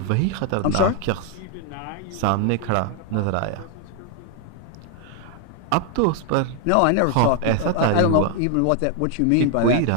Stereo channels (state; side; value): different; both; correlation 0.00